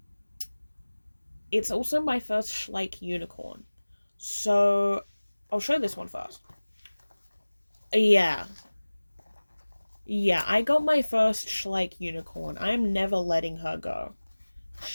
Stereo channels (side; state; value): both; inverted; correlation -1.00